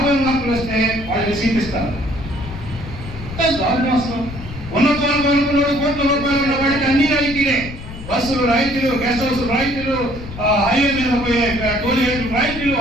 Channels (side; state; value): left; noise; rumble, 11 dB below the sound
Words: మార్కులు వస్తే వాళ్ళకి సీట్ ఇస్తారు. అసలు ఉన్నతనుకున్నాడు కోట్ల రూపాయలు ఉన్న వాడికి అన్ని రాయితీలే. బస్సులు రాయితీలు, గెస్ట్ హౌస్ రాయితీలు, హైవే మీద పోయే టోల్ గేట్లు రాయితీలు,